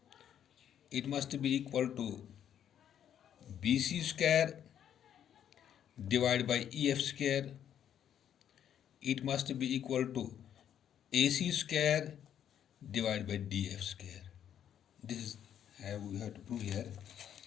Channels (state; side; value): quieter; right; 9.7 dB